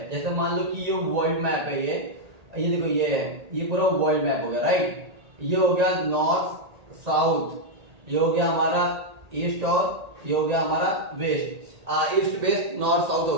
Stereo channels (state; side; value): late; left; 1.8 ms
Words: जैसे मान लो कि ये वर्ल्ड मैप है, ये देखो ये है, ये पूरा वर्ल्ड मैप हो गया, राइट। ये हो गया नॉर्थ साउथ, ये हो गया हमारा ईस्ट और ये हो गया हमारा west, east west north south हो